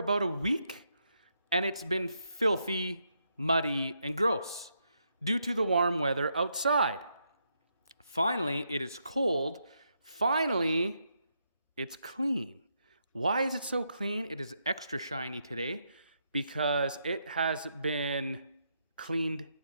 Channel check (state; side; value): inverted; both; correlation -0.79